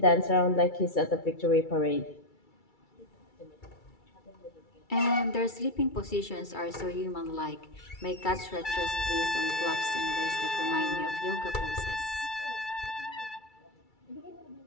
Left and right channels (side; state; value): right; late; 2.3 ms